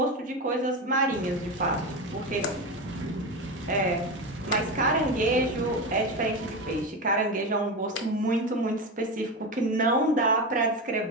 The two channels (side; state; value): both; normal; correlation 0.19